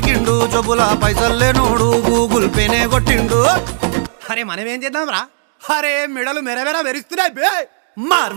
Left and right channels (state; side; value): silent; left; digital silence